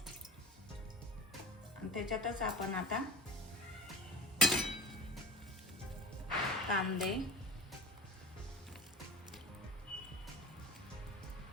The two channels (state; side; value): normal; both; correlation 0.33